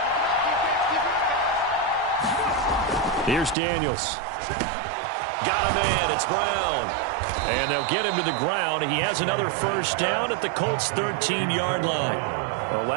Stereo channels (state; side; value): drops out; left; at 3.6 s